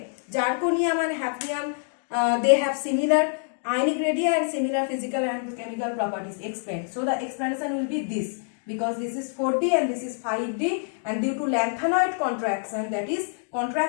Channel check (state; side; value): silent; right; 61 dB below the other